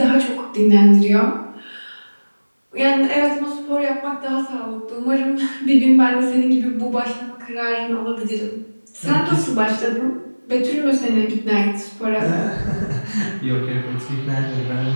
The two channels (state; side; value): inverted; both; correlation -1.00